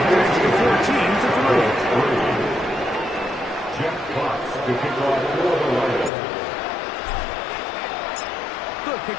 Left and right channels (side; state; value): right; drops out; at 6.1 s